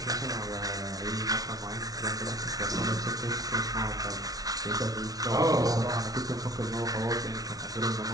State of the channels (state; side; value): late; left; 0.18 ms